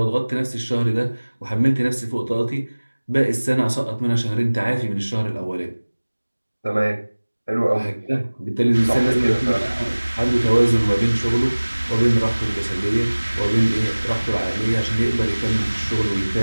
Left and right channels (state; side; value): inverted; both; correlation -1.00